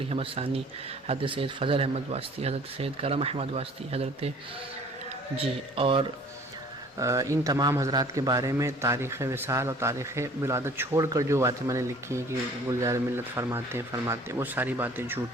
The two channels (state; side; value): normal; both; correlation 0.51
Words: احمد ثانی، حضرت سید فضل احمد واسطی، حضرت سید کرم احمد واسطی، اور ان تمام حضرات کے بارے میں تاریخ وصال اور تاریخ ولادت چھوڑ کر جو باتیں میں نے لکھی ہیں کہ گلزار ملت فرماتے ہیں، وہ ساری باتیں